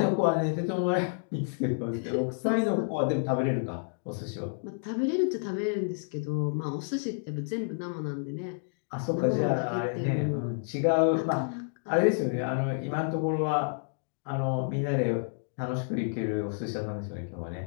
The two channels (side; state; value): right; silent; digital silence